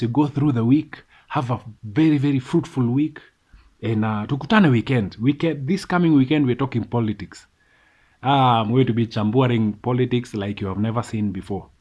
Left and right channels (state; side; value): identical; both; correlation 1.00